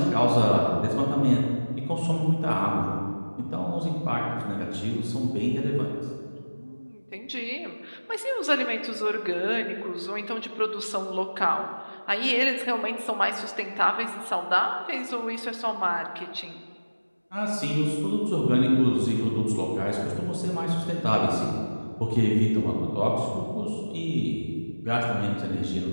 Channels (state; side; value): inverted; both; correlation -1.00